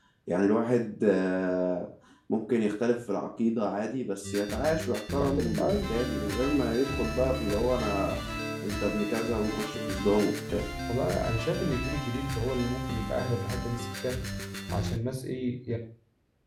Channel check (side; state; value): both; identical; correlation 1.00